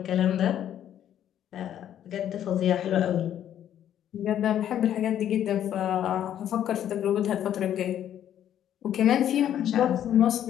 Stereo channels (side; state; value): right; quieter; 10.6 dB